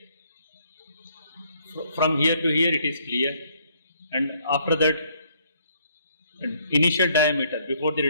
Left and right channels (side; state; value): both; inverted; correlation -0.66